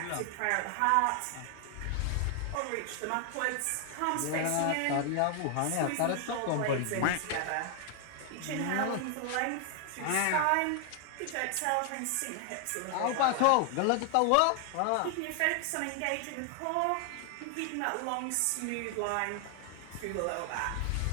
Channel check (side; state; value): both; different; correlation 0.00